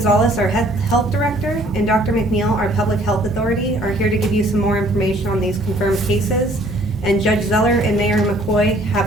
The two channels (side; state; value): both; normal; correlation 0.58